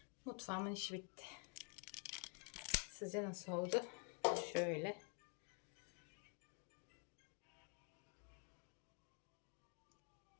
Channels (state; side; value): quieter; right; 35.9 dB